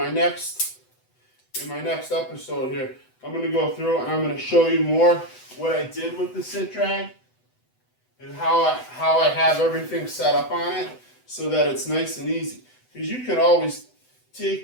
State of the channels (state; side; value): late; right; 8.0 ms